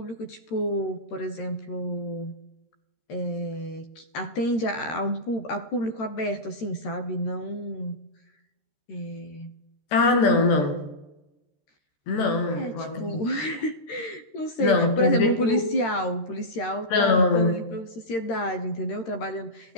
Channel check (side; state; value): right; late; 14 ms